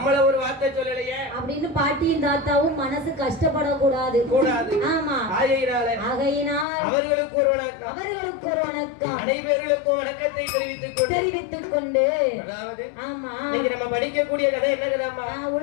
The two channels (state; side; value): drops out; right; at 6.7 s